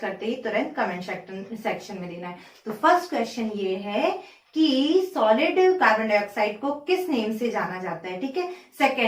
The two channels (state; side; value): identical; both; correlation 1.00